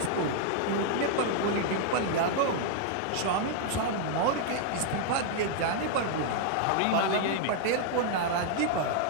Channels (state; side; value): different; both; correlation 0.00